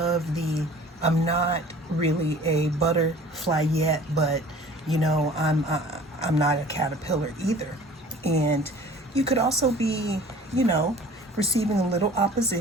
the, I'm not really a butterfly yet, but I'm not a caterpillar either. And you could also be, receiving a little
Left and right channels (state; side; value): normal; both; correlation 0.47